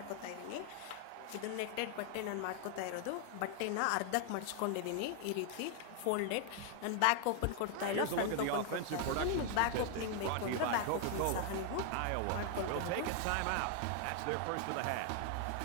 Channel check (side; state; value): both; different; correlation 0.00